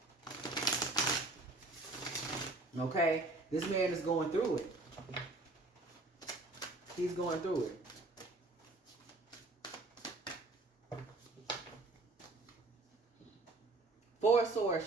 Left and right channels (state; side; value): quieter; left; 3.1 dB